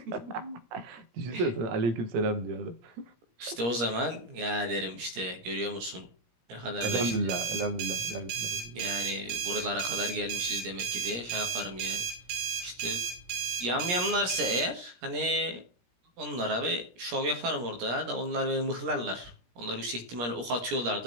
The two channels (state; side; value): late; left; 17 ms